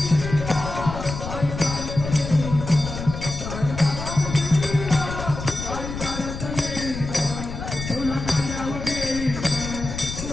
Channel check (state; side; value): noise; left; rumble, 7 dB below the sound